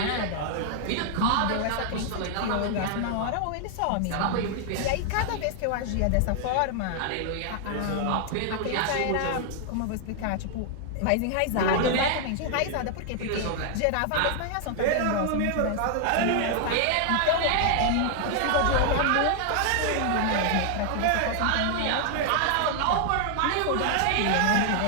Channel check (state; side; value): different; both; correlation 0.00